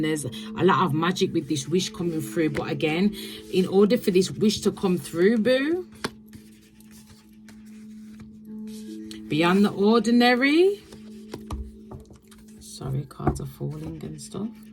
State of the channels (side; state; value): both; identical; correlation 1.00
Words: there's a lot of magic with this wish coming through. But again, in order for this wish to come through, boo, beyond the ordinary. Sorry, cards are falling and stuff.